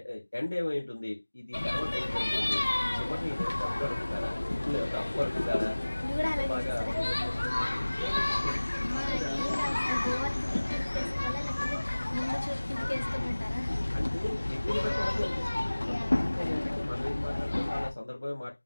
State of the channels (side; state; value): both; inverted; correlation -1.00